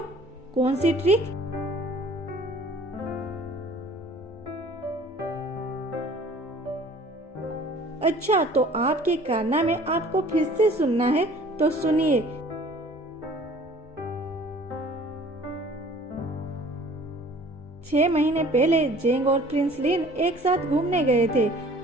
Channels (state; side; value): normal; both; correlation 0.50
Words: कौन सी ट्रिक? अच्छा तो आपके कारनामे आपको फिर से सुनना है तो सुनिए। 6 महीने पहले जेंग और प्रिंस लिन एक साथ घूमने गए थे।